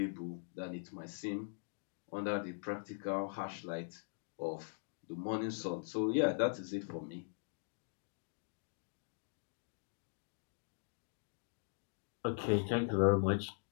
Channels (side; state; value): right; silent; digital silence